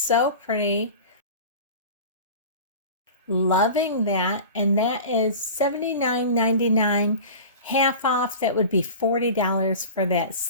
pretty. Loving that. And that is $79.99. Half off, that would be $40 for that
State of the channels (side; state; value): both; inverted; correlation -0.35